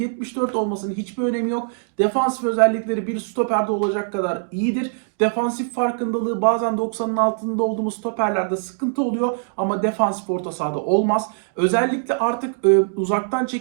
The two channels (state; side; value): silent; left; digital silence